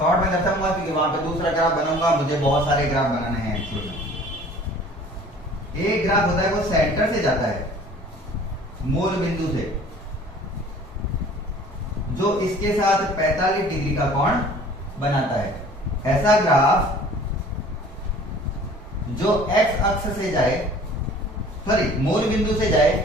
में दर्शाऊंगा क्योंकि वहां पे दूसरा ग्राफ बनाऊंगा, मुझे बहुत सारे ग्राफ बनाने हैं एक्चुअली। एक ग्राफ होता है वो सेंटर से जाता है, मूल बिंदु से, जो इसके साथ 45 डिग्री का कोण बनाता है। ऐसा ग्राफ जो x अक्ष से जाए, सॉरी मूल बिंदु से जाए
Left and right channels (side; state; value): both; normal; correlation 0.49